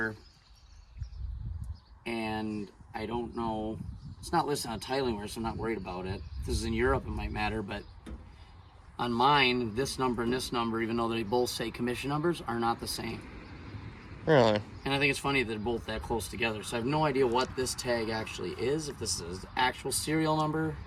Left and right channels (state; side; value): identical; both; correlation 1.00